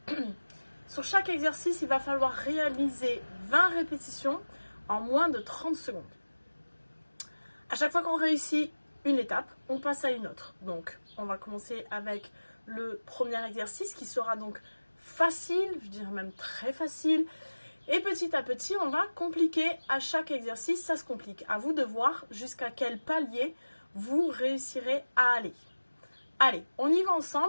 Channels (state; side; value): inverted; both; correlation -1.00